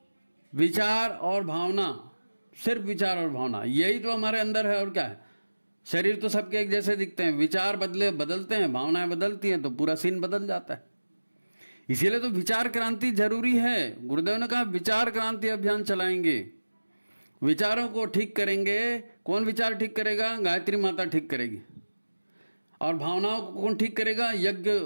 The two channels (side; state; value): both; inverted; correlation -1.00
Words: विचार और भावना, सिर्फ विचार और भावना, यही तो हमारे अंदर है। और क्या है? शरीर तो सबके एक जैसे दिखते हैं, विचार बदलते हैं, भावनाएं बदलती हैं, तो पूरा सीन बदल जाता है। इसीलिए तो विचार क्रांति जरूरी है। गुरुदेव ने कहा विचार क्रांति अभियान चलाएंगे, विचारों को ठीक करेंगे। कौन विचार ठीक करेगा? गायत्री माता ठीक करेगी। और भावनाओं को कौन ठीक करेगा?